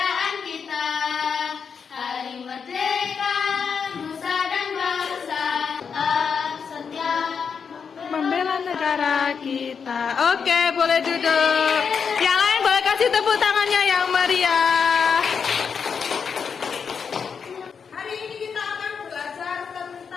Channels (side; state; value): right; quieter; 6.3 dB